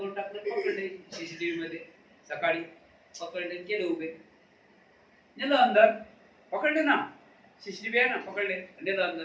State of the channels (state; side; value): identical; both; correlation 1.00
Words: टाकलं. पकडले सीसीटीव्ही मध्ये, सकाळी पकडले, केले उभे, नेलं अंदर. पकडले ना, सीसीटीव्ही आहे ना, पकडले, नेलं अंदर.